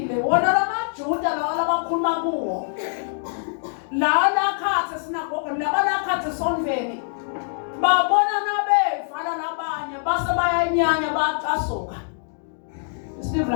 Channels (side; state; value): right; silent; digital silence